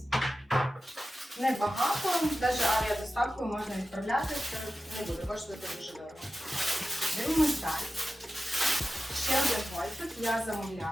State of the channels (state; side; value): normal; both; correlation 0.93